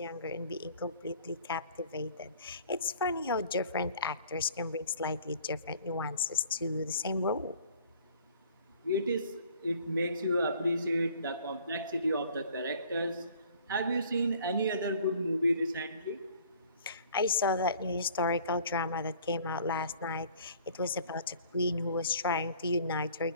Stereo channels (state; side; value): inverted; both; correlation -0.53